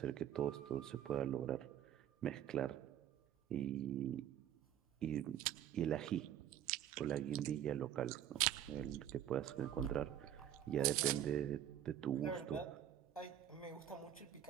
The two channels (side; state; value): left; quieter; 10.7 dB